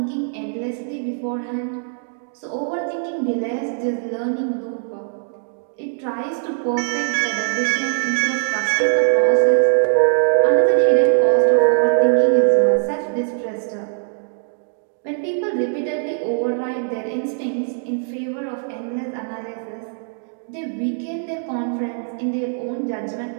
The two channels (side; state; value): left; silent; digital silence